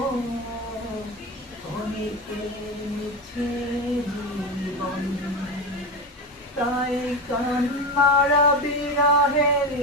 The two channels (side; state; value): both; normal; correlation 0.19